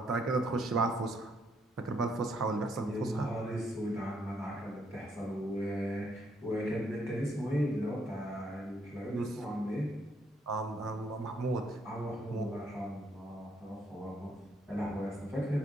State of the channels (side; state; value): both; normal; correlation 0.72